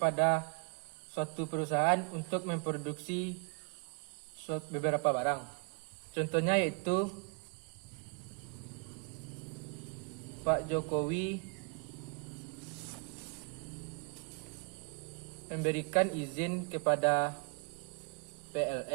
suatu perusahaan untuk memproduksi beberapa barang. Contohnya yaitu Pak Jokowi memberikan izin kepada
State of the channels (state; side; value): quieter; left; 33.0 dB